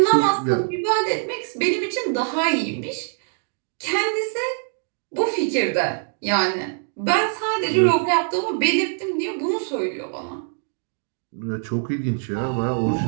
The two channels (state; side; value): silent; left; digital silence